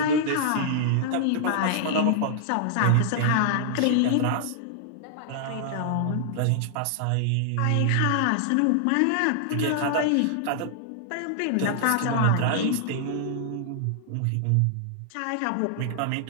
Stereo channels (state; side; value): different; both; correlation -0.01